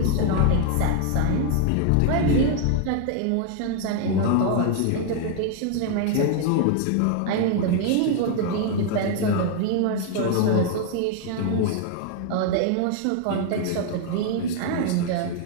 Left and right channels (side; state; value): both; different; correlation 0.00